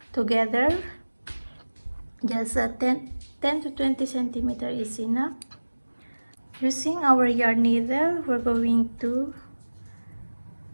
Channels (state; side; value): inverted; both; correlation -1.00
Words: together. Just 10 to 20 centimeter is enough. Using our yarn needle, we're going to,